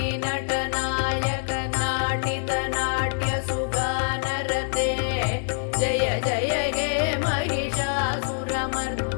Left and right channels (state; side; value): silent; right; digital silence